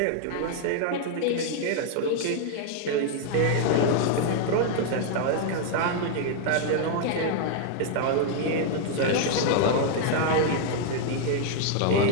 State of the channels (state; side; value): different; both; correlation 0.00